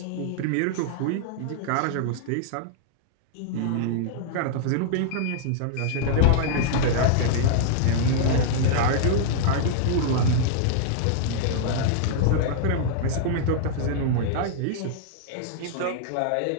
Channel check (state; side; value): different; both; correlation -0.01